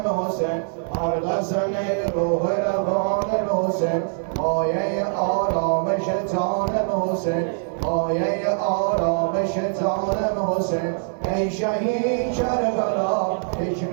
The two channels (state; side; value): silent; left; digital silence